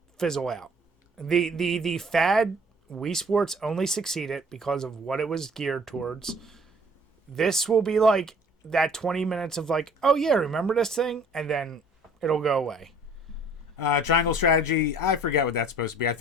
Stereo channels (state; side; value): normal; both; correlation 0.54